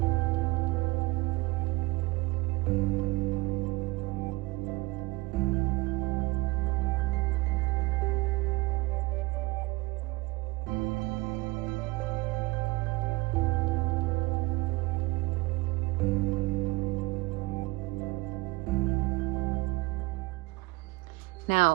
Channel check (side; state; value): left; quieter; 22.1 dB